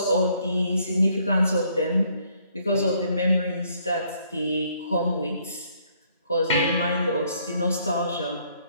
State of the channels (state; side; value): inverted; both; correlation -0.67